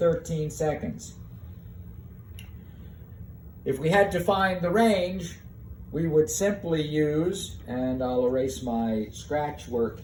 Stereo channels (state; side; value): identical; both; correlation 1.00